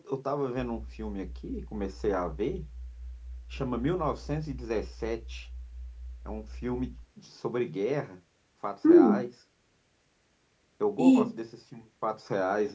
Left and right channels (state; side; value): identical; both; correlation 1.00